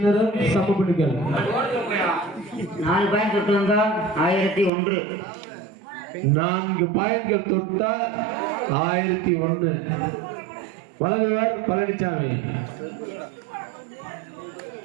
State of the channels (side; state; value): left; drops out; at 4.7 s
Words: சமப்பணிகள் 4 பாயிண்ட் தொட்டு வந்தா 1001. 4 பாயிண்ட்கள் தொட்டா 1001. வழங்குவர் பழனிசாமி.